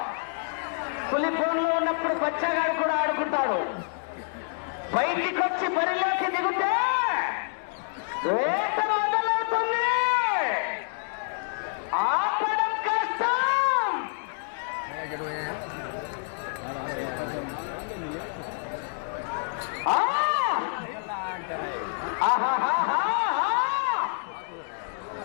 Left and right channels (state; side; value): silent; right; digital silence